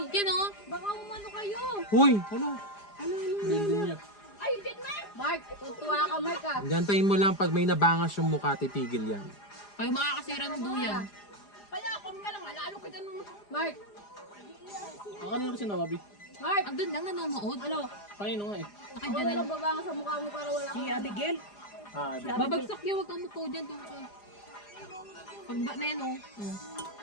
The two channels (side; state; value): right; late; 4.9 ms